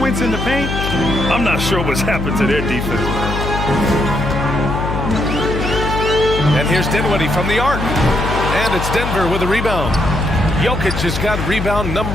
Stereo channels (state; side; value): noise; left; hum, 4 dB below the sound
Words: in the paint. I'm not sure what's happened to their defense, man. And here's Dinwiddie from the arc. And it's Denver with a rebound. Jokic has got rebound